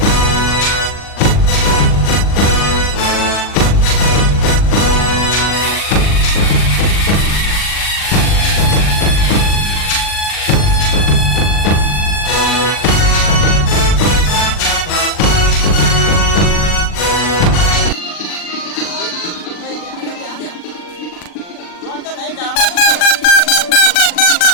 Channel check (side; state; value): right; late; 40 ms